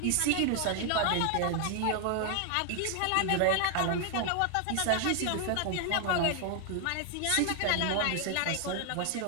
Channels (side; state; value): both; different; correlation 0.00